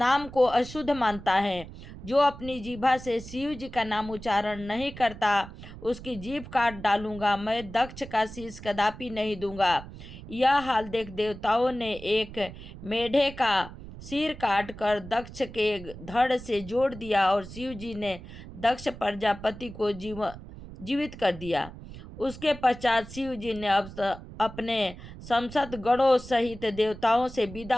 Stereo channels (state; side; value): noise; right; rumble, 14 dB below the sound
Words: को अशुद्ध मानता है। जो अपनी जीभा से शिव जी का नाम उच्चारण नहीं करता, उसकी जीभ काट डालूंगा। मैं दक्ष का शीश कदापि नहीं दूंगा। यह हाल देख देवताओं ने एक मेढे का सिर काट कर दक्ष के धड़ से जोड़ दिया और शिव जी ने दक्ष प्रजापति को जीवित कर दिया। उसके पश्चात शिव जी ने अपने संसद गणों सहित देवताओं से